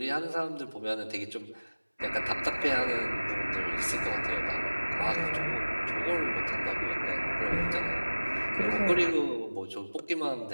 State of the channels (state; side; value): inverted; both; correlation -1.00